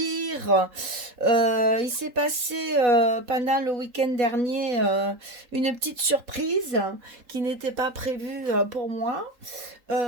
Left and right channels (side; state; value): left; late; 3.8 ms